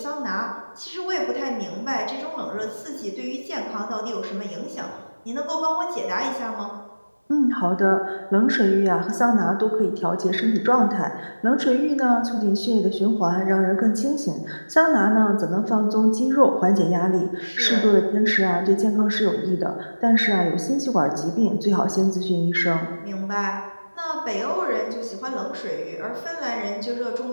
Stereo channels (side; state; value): both; inverted; correlation -1.00